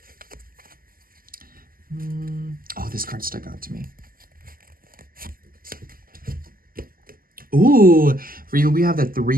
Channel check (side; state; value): left; late; 0.42 ms